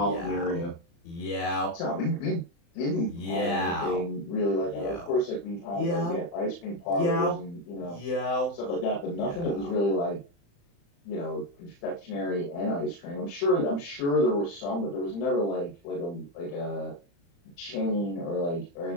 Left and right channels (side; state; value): right; late; 35 ms